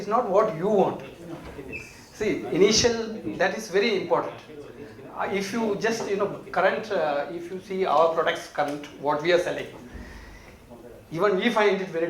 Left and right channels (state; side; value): identical; both; correlation 1.00